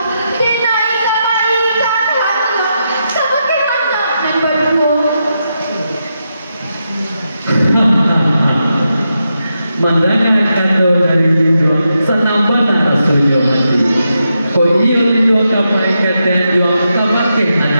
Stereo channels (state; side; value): inverted; both; correlation -0.85